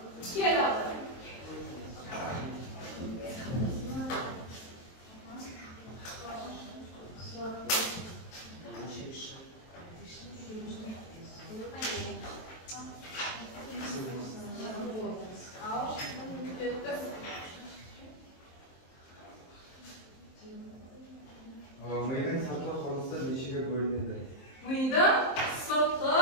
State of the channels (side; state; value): right; late; 23 ms